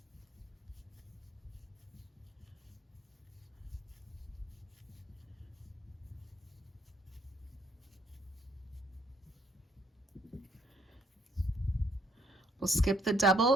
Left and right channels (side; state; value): both; normal; correlation 0.68